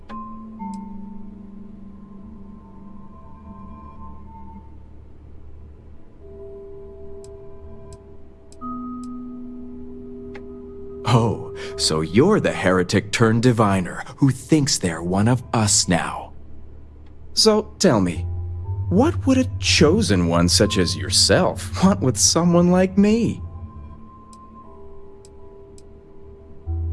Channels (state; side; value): identical; both; correlation 1.00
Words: Oh, so you're the heretic turned diviner who thinks they're one of us now. So tell me, what would a chosen one such as yourself want with someone like me?